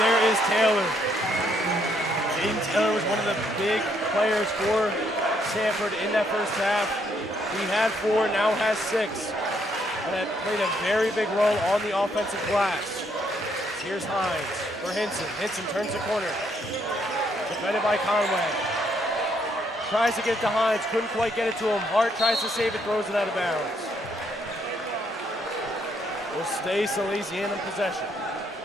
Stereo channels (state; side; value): normal; both; correlation 0.71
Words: is Taylor. Jaden Taylor was one of the big players for Sanford in that first half. He had 4, now has 6. And that played a very big role on the offensive glass. Here's Hines for Hinson. Hinson turns the corner. Defended by Conway. Tries to get it to Hines, couldn't quite get it to him. Hart tries to save it, throws it out of bounds. Will stay Salesianum possession.